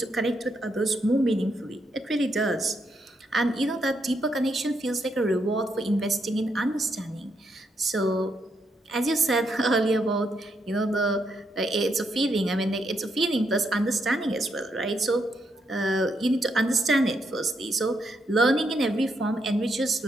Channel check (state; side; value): normal; both; correlation 0.78